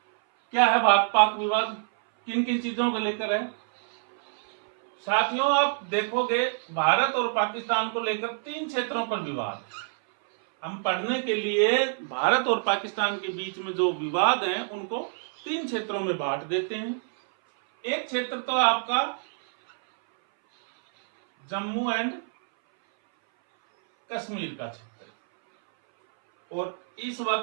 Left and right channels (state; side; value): silent; left; 59 dB below the other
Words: क्या है भारत पाक विवाद? किन किन चीजों को लेकर है? साथियों, आप देखोगे भारत और पाकिस्तान को लेकर 3 क्षेत्रों पर विवाद। हम पढ़ने के लिए भारत और पाकिस्तान के बीच में जो विवाद हैं उनको 3 क्षेत्रों में बांट देते हैं। एक क्षेत्र तो आपका जम्मू एंड कश्मीर का क्षेत्र, और इस